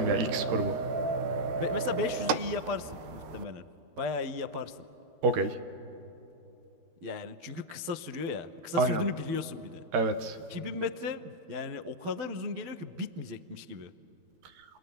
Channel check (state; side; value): late; left; 12 ms